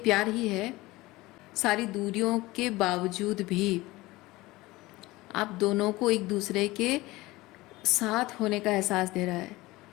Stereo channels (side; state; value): right; quieter; 19.9 dB